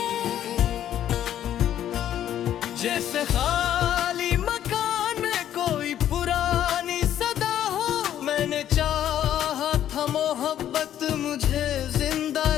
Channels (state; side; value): quieter; right; 11.1 dB